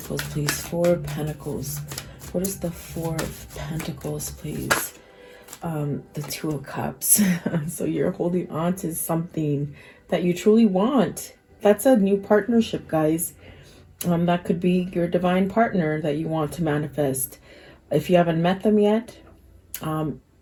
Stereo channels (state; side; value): identical; both; correlation 1.00